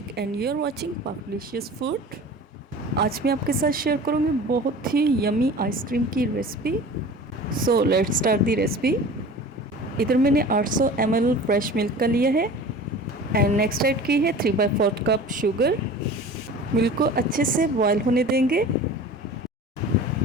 and you are watching पाकलिशियस food. आज मैं आपके साथ शेयर करूँगी बहुत ही यमी आइसक्रीम की recipe. So let's start the recipe. इधर मैंने 800 ml फ्रेश मिल्क का लिया है एंड नेक्स्ट ऐड की है 3/4 कप शुगर। मिल्क को अच्छे से बॉयल होने देंगे।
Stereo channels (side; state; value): both; normal; correlation 0.39